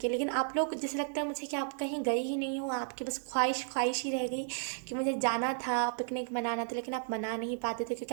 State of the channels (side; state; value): left; silent; digital silence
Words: लेकिन आप लोग, जैसे लगता है मुझे कि आप कहीं गए ही नहीं हो, आपकी बस ख्वाहिश ही रह गई कि मुझे जाना था, पिकनिक मनाना था, लेकिन आप मना नहीं पाते थे